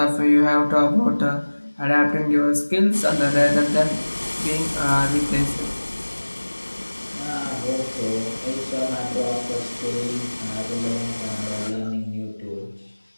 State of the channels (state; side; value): inverted; both; correlation -1.00